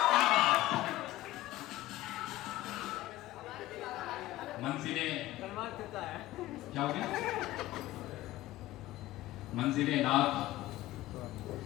मंजिले क्या हो गया? मंजिले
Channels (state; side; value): quieter; right; 16.2 dB